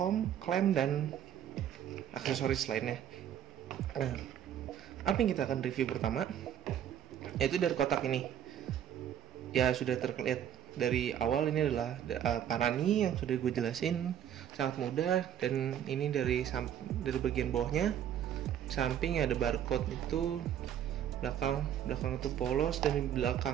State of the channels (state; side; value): quieter; left; 10.0 dB